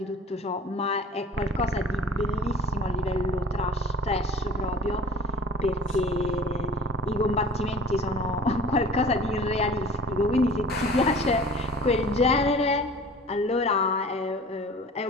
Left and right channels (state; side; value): normal; both; correlation 0.45